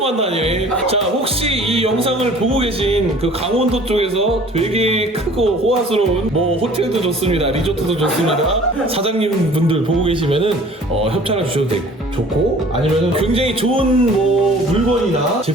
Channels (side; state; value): both; normal; correlation 0.49